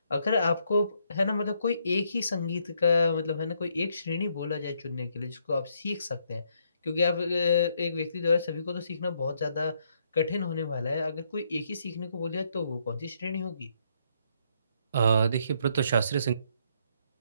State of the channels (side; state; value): both; inverted; correlation -0.73